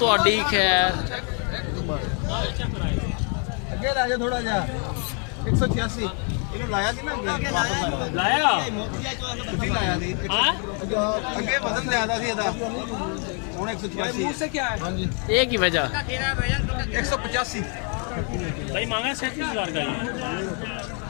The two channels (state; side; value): quieter; right; 40.0 dB